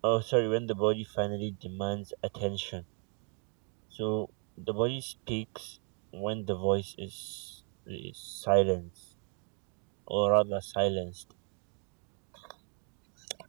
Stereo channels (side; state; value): left; quieter; 39.5 dB